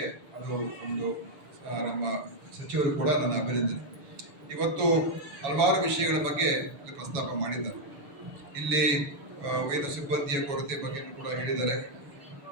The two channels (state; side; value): late; left; 6.8 ms